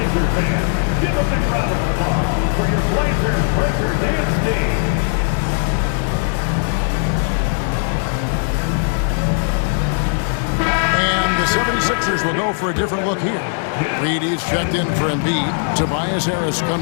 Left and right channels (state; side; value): silent; right; 65 dB below the other